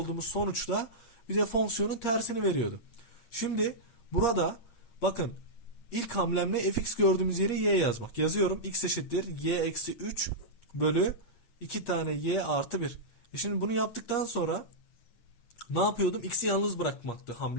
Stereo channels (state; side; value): late; right; 8.5 ms